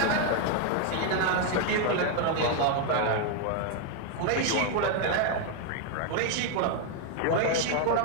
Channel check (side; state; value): both; different; correlation 0.01